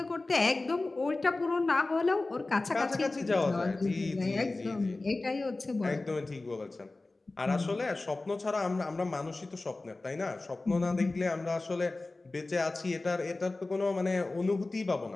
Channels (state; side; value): quieter; right; 3.2 dB